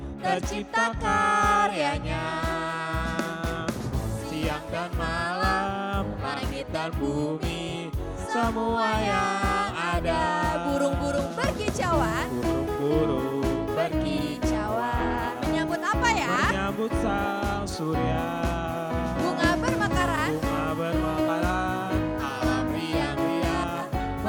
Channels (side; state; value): both; identical; correlation 1.00